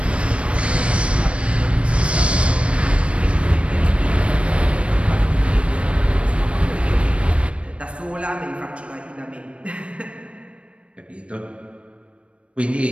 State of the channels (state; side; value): late; left; 0.060 ms